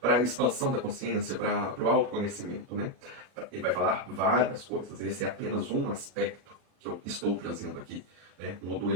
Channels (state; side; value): late; left; 38 ms